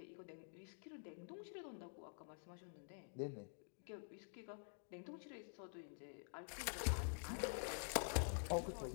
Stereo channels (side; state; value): right; silent; digital silence